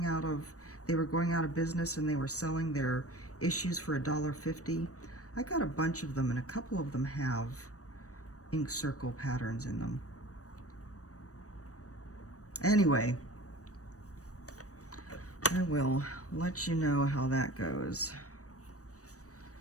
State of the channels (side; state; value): right; late; 0.66 ms